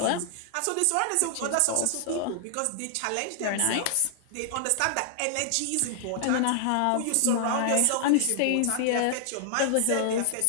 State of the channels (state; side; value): different; both; correlation -0.01